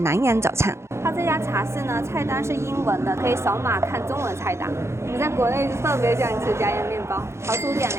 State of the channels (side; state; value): left; late; 0.13 ms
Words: 洋早餐。它这家茶室呢，菜单是英文的，可以扫码看中文菜单。我们在国内特别喜欢吃加盐面包。桃叔点